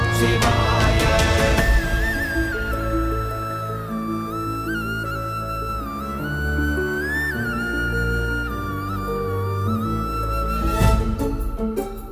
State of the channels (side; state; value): both; identical; correlation 1.00